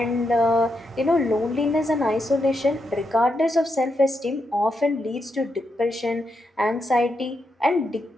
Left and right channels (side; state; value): both; normal; correlation 0.83